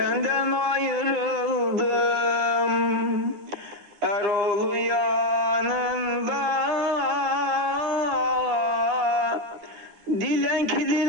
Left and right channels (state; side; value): late; left; 9.4 ms